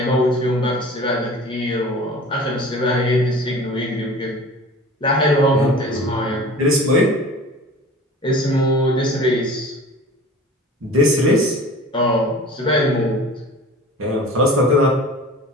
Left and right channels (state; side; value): normal; both; correlation 0.41